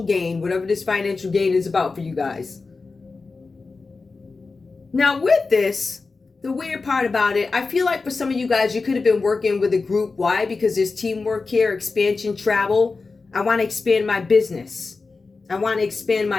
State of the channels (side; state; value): right; quieter; 4.1 dB